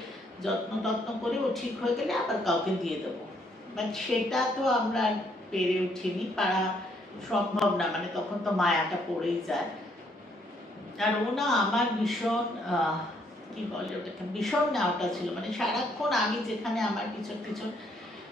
যত্ন টত্ন করে ও ঠিক হয়ে গেলে আবার কাউকে দিয়ে দেবো। বাট সেটা তো আমরা পেরে উঠিনি, পারা সম্ভব না, মানে তখন তো মায়াটা পড়েই যায়। আর ও না আমার ভীষণ কি বলে ওটাকে, ভীষণ নেওয়াটা ছিল, মানে সারাক্ষণ আমি যেখানে আমার পিছন পিছন,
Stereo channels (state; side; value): normal; both; correlation 0.70